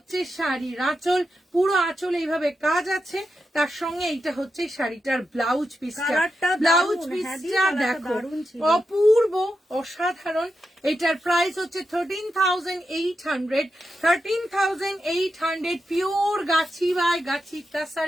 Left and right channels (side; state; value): both; normal; correlation 0.87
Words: শাড়ির আঁচল, পুরো আঁচল এইভাবে কাজ আছে। তার সঙ্গে এইটা হচ্ছে শাড়িটার ব্লাউজ পিসটা। ব্লাউজ পিসটা দেখো, অপূর্ব, অসাধারণ। এটার প্রাইস হচ্ছে 13,800 13,800। পিওর গাছি বাই গাছি